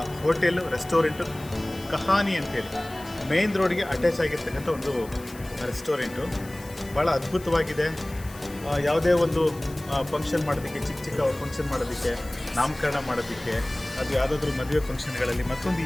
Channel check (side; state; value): left; noise; hiss, 19 dB below the sound